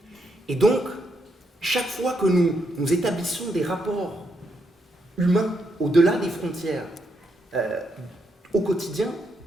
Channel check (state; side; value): normal; both; correlation 0.79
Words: Et donc, chaque fois que nous établissons des rapports humains au-delà des frontières au quotidien,